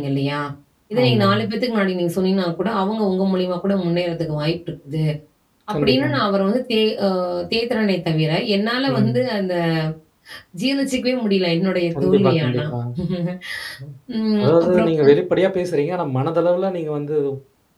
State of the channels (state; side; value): identical; both; correlation 1.00